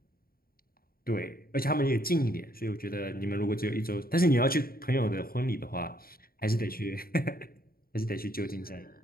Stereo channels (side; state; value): right; late; 0.43 ms